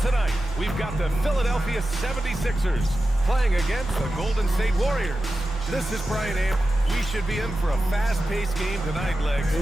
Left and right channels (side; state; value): both; normal; correlation 0.93